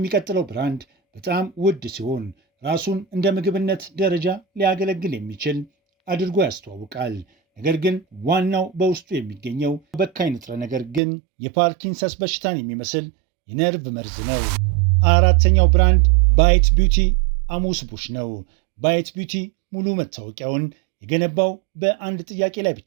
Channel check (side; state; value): left; drops out; at 11.0 s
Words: ብራንድ በጣም ውድ ሲሆን ራሱን እንደ ምግብነት ደረጃ ሊያገለግል የሚችል አድርጎ ያስተዋውቃል። ነገር ግን ዋናው በውስጡ የሚገኘው በካይ ንጥረ ነገር ግን የፓርኪንሰንስ በሽታን የሚመስል የነርቭ መርዝ ነው። 4ኛው ብራንድ ባይት ቢዩቲ አሙስ ቡሽ ነው። ባይት ቢዩቲ ሙሉ መታወቂያውን የገነባው በአንድ ጥያቄ ላይ